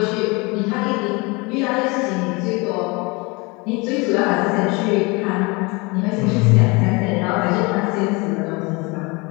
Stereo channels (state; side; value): quieter; right; 27.0 dB